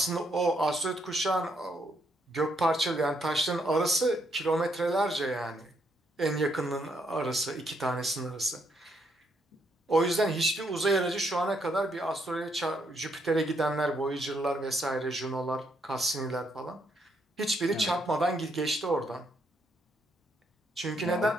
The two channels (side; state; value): both; normal; correlation 0.75